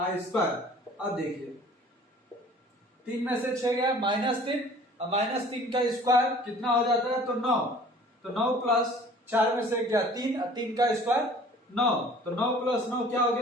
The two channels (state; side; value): normal; both; correlation 0.49